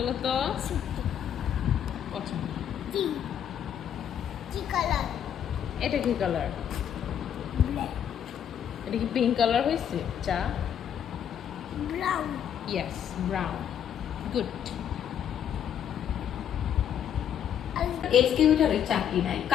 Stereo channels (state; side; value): quieter; right; 9.3 dB